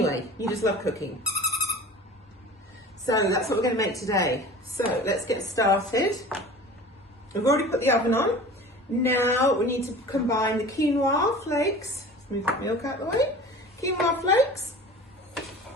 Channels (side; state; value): both; normal; correlation 0.40